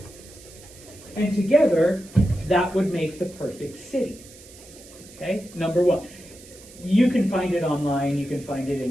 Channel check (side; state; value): right; noise; hiss, 20 dB below the sound